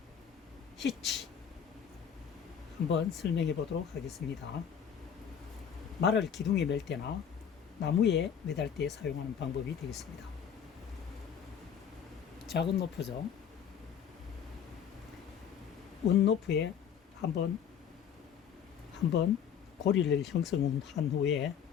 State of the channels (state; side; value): quieter; right; 8.0 dB